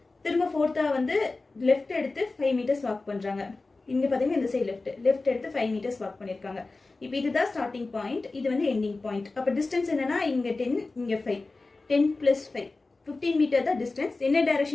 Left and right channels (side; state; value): right; quieter; 3.5 dB